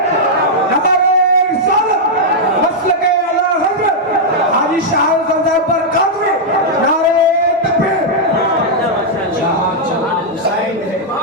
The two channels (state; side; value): normal; both; correlation -0.05